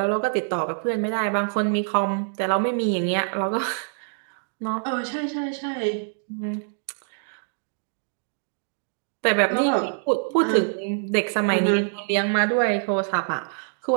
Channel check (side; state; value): left; silent; 62 dB below the other